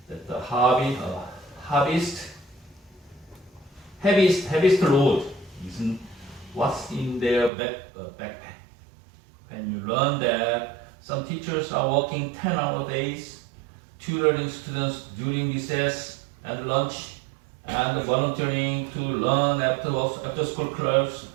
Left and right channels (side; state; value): left; drops out; at 7.5 s